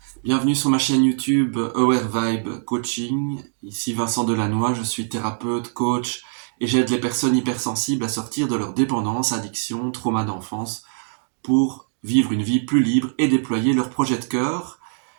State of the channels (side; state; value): left; silent; digital silence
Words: bienvenue sur ma chaîne YouTube Aware Vibe Coaching. Ici Vincent Delannoy, je suis thérapeute, coach et j'aide les personnes hypersensibles à sortir de leur dépendance, addiction, trauma d'enfance pour vivre une vie plus libre et déployer leur projet de cœur.